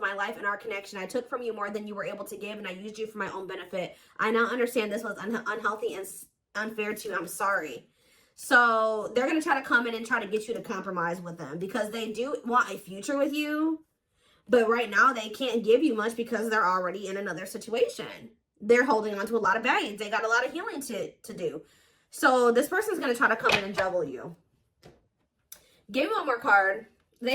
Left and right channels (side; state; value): both; identical; correlation 1.00